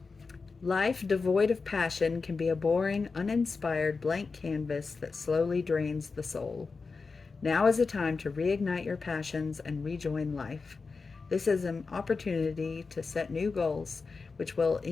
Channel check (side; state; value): right; quieter; 4.5 dB